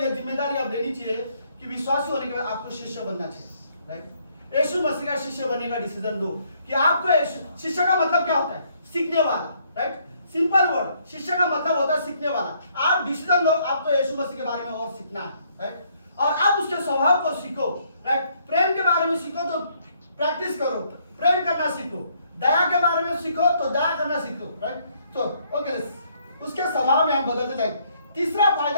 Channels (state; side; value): inverted; both; correlation -0.68